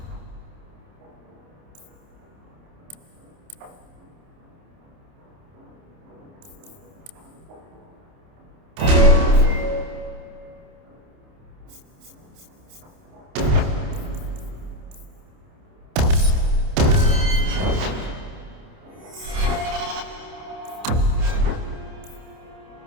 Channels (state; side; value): late; left; 28 ms